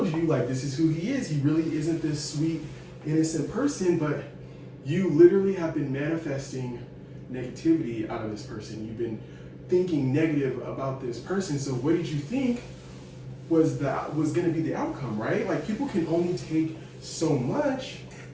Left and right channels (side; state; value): both; identical; correlation 1.00